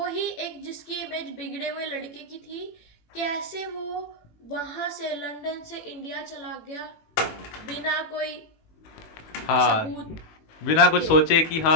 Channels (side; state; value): right; late; 18 ms